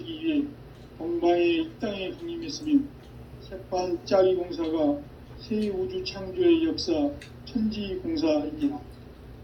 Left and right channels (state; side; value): identical; both; correlation 1.00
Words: 위해 동방의 이 땅에 강림했으며 새판짜기 공사가 새 우주 창조의 역사 천지공사이니라.